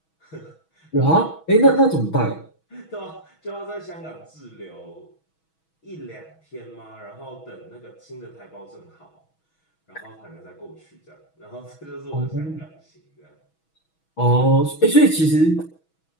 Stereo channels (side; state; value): right; late; 6.2 ms